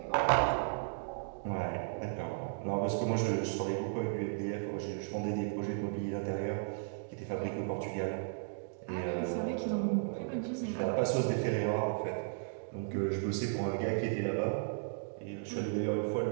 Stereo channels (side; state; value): left; silent; digital silence